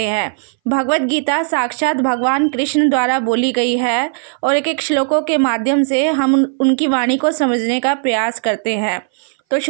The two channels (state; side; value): silent; left; 61 dB below the other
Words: हैं। भगवत गीता साक्षात भगवान कृष्ण द्वारा बोली गई है और एक एक श्लोकों के माध्यम से हम उनकी वाणी को समझने का प्रयास करते हैं। तो